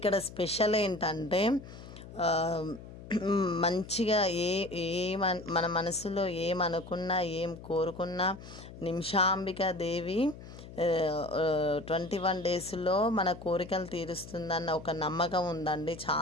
స్పెషల్ ఏంటంటే మంచిగా మన మనసులో ఏమనుకున్నా, ఏం కోరుకున్నా నిమిషాంబిక దేవి 21 డేస్లో మన కోరికలు తీరుస్తుందన్న ఒక నమ్మకం ఉందండి.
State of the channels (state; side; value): noise; left; hum, 15 dB below the sound